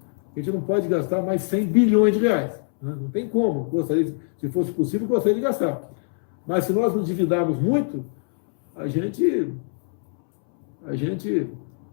gente não pode gastar mais 100 bilhões de reais. Não tem como. Se fosse possível, gostaria de gastar. Mas se nós nos endividarmos muito, a gente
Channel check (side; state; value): right; silent; 63 dB below the other